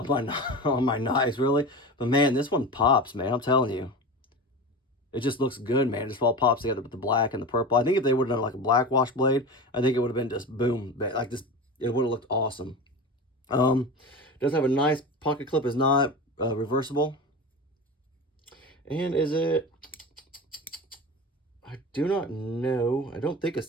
my knives, really. But, man, this one pops, man. I'm telling you. It just looks good, man. It just all pops together with the black and the purple. I think if they would have done like a black wash blade, I think it would have been just boom. Like this, it would have looked awesome. Does have a nice pocket clip. Is not reversible. And is it? I do not know. I don't think it's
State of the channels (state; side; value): normal; both; correlation 0.29